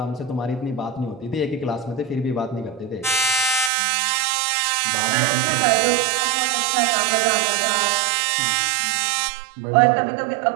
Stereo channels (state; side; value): drops out; left; at 3.7 s